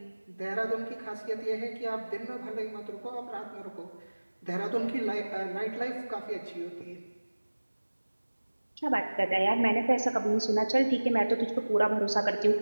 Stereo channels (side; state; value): both; inverted; correlation -1.00